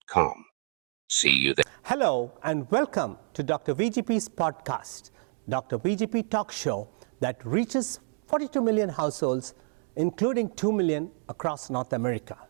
See you there. Hello and welcome to Dr. VGP's podcast, Dr. VGP Talk Show that reaches 42 million households, including 2 million across North America.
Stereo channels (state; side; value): silent; left; 59 dB below the other